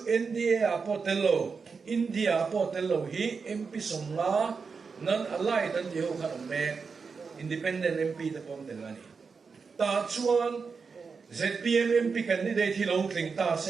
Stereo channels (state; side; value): quieter; left; 5.2 dB